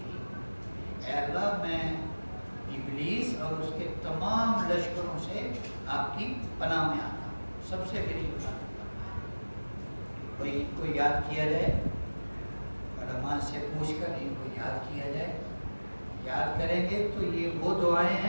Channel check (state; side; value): inverted; both; correlation -1.00